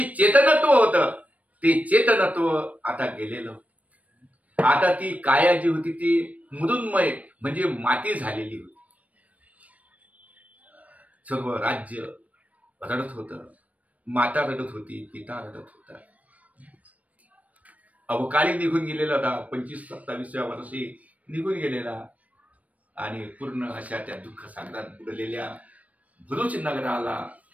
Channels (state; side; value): late; left; 0.069 ms